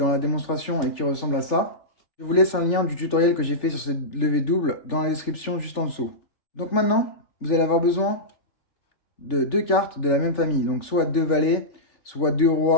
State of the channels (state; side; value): late; right; 3.4 ms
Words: la démonstration et qui ressemble à ça, je vous laisse un lien du tutoriel que j'ai fait sur cette levée double dans la description juste en dessous. Donc maintenant, vous allez avoir besoin de deux cartes de la même famille. Donc soit deux valets, soit deux